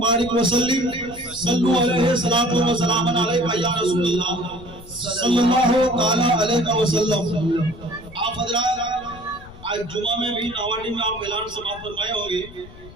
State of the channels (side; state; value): left; noise; rumble, 19 dB below the sound